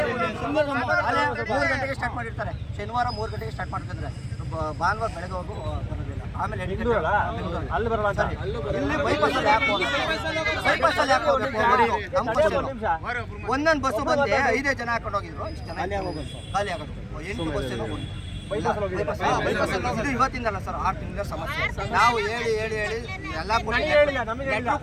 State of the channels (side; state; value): both; identical; correlation 1.00